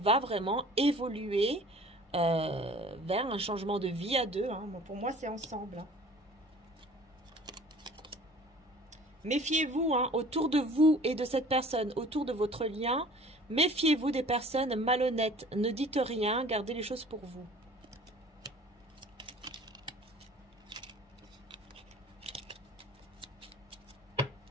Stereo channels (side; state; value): both; normal; correlation 0.48